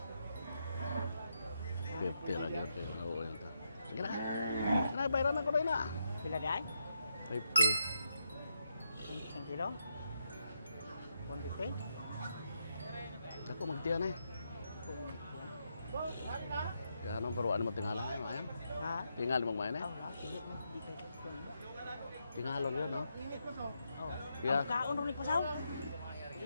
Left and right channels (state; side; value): inverted; both; correlation -0.82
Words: 50 lang yun. Oo, yun to. Sige na. Bayaran ako rin na. Pila di ay? 50. 1 kilo? 150? Ako magtiyan eh. Kaya anong paruan mo tingala ngayon, Mayan? Ha? Tingal mo Mayan eh? Hindi mo. Di kayo. Tingalon yun, no? Oh. Yeah. Ang kaon rin pasaw.